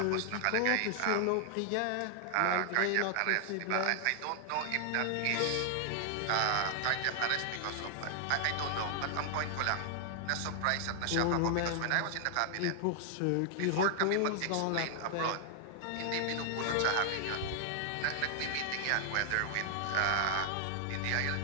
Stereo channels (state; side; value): different; both; correlation 0.00